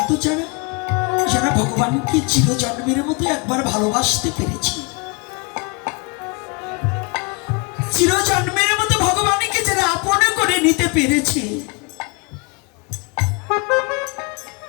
যারা, যারা ভগবানকে চিরজন্মের মতো একবার ভালোবাসতে পেরেছে, চিরজন্মের মতো ভগবানকে যারা আপন করে নিতে পেরেছে,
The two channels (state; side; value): quieter; right; 30.9 dB